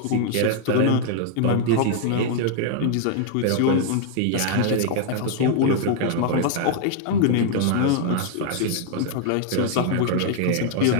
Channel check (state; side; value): different; both; correlation 0.00